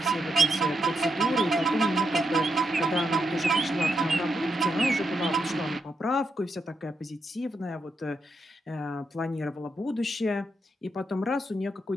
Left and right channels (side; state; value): both; normal; correlation 0.82